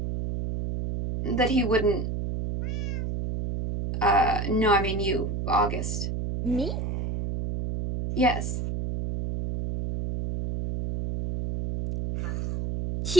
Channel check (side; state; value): right; noise; hum, 2 dB below the sound